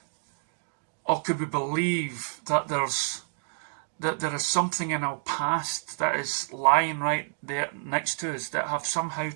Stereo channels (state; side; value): silent; left; digital silence